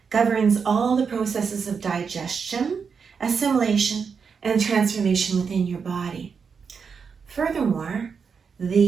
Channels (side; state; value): left; quieter; 5.9 dB